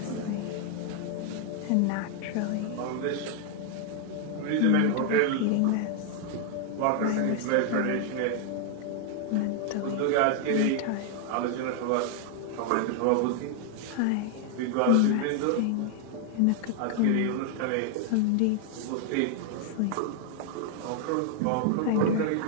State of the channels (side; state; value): both; different; correlation 0.00